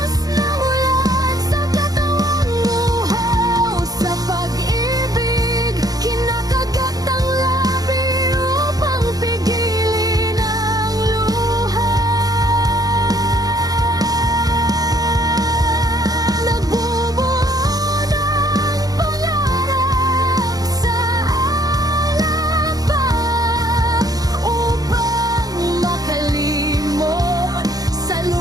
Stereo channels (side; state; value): left; late; 0.18 ms